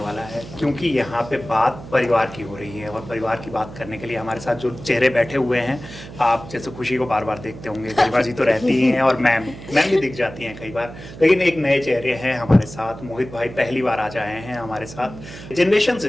है, क्योंकि यहाँ पे बात परिवार की हो रही है। और परिवार की बात करने के लिए हमारे साथ जो चेहरे बैठे हुए हैं, आप जैसे खुशी को बार बार देखते होंगे, गरिमा जी तो रहती ही हैं और मैम भी दिख जाती हैं कई बार, लेकिन एक नए चेहरे हैं हमारे साथ। मोहित भाई पहली बार आज आए हैं हमारे साथ। जनरेशन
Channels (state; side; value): noise; right; hum, 14 dB below the sound